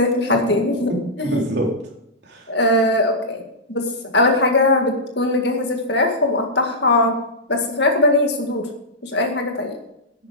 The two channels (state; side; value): normal; both; correlation -0.11